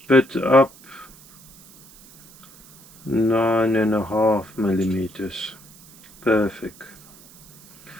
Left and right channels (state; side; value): noise; right; hiss, 24 dB below the sound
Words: bit up, 9.5mm. Perfect.